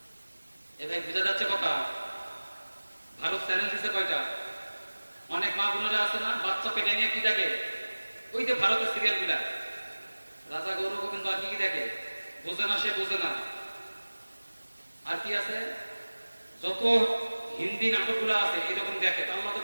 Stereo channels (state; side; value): inverted; both; correlation -1.00